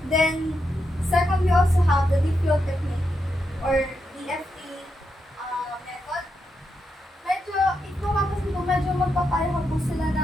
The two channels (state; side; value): normal; both; correlation 0.84